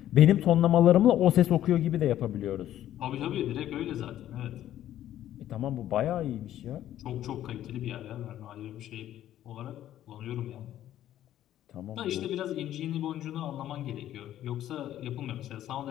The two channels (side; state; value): right; quieter; 12.3 dB